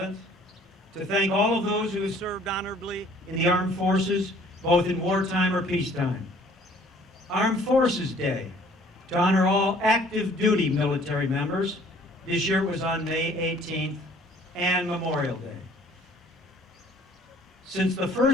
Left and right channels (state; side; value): normal; both; correlation 0.56